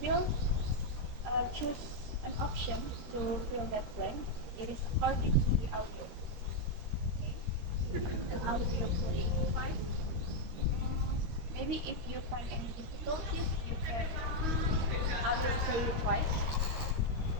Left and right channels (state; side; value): late; left; 13 ms